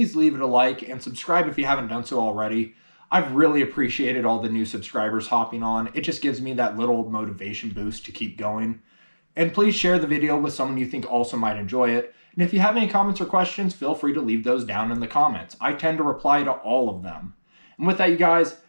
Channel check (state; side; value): inverted; both; correlation -1.00